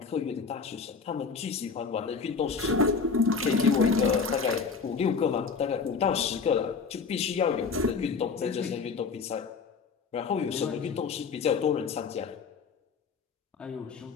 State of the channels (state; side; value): quieter; right; 5.3 dB